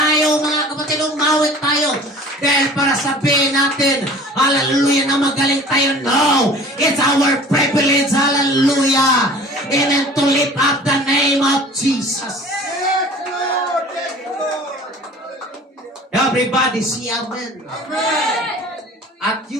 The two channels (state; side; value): normal; both; correlation 0.45